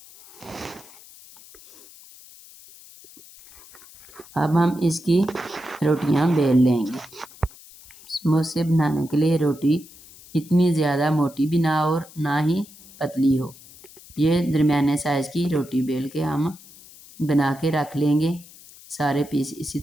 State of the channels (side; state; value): left; noise; hiss, 21 dB below the sound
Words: अब हम इसकी रोटियां बेल लेंगे। समोसे बनाने के लिए रोटी इतनी ज़्यादा मोटी भी ना हो और ना ही पतली हो। ये दरमियाने साइज़ की रोटी बेल के हम बना के रख लेंगे। सारे पीस इसी